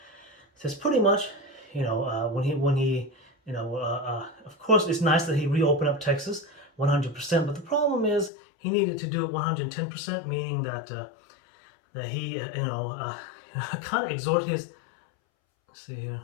says pretty much, when he of course it's nice that he reopened up Texas 100%, but the problem is he needed to do it 110%, meaning that that he kind of exhort his. Let's see here.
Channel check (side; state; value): right; drops out; at 8.3 s